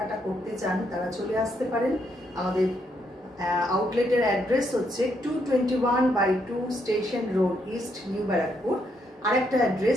করতে চান তারা চলে আসতে পারেন। আমাদের আউটলেটের অ্যাড্রেস হচ্ছে 221/2 station road east, new Barrackpore. আরেকটা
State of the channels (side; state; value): both; normal; correlation 0.76